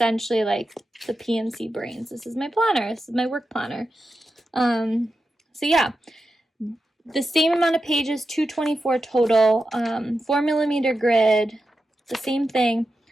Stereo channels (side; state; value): both; normal; correlation 0.90